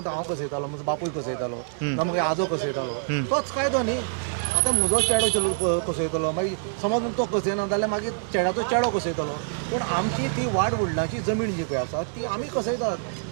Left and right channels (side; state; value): left; silent; digital silence